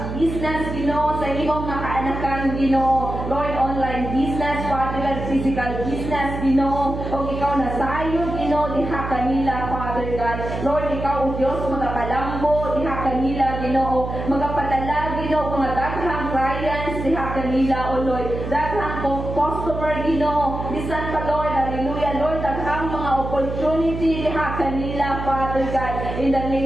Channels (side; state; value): right; noise; hum, 6 dB below the sound